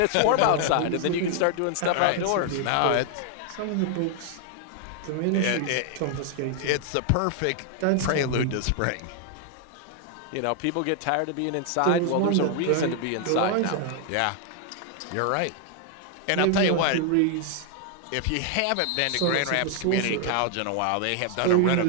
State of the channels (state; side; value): different; both; correlation 0.00